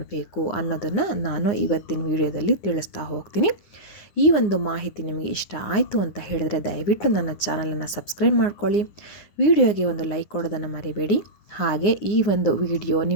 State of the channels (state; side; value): late; right; 9.7 ms